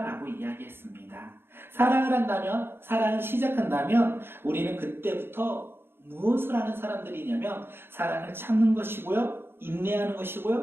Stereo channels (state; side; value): late; left; 0.11 ms